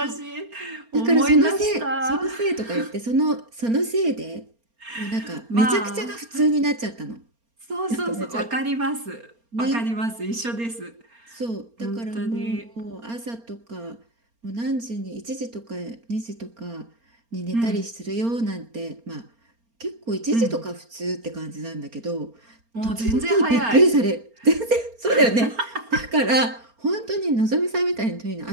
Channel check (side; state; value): left; late; 4.3 ms